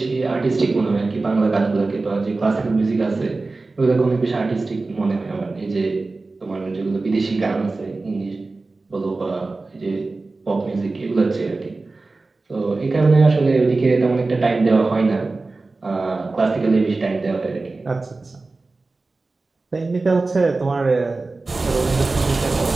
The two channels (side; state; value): left; quieter; 3.5 dB